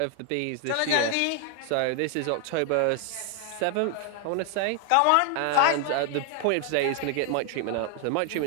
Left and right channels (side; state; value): both; different; correlation 0.00